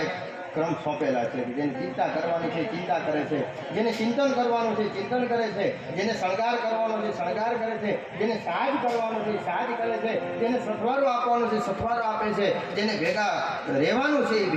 એક ક્રમ સોંપેલા છે. જેને ચિંતા કરવાની છે ચિંતા કરે છે, જેને ચિંતન કરવાનું છે ચિંતન કરે છે, જેને શણગાર કરવાનો છે શણગાર કરે છે, જેને સાજ કરવાનો છે સાજ કરે છે, જેને સથવારો આપવાનો છે સથવારો આપે છે, જેને ભેગા રહેવાનું છે એ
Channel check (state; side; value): identical; both; correlation 1.00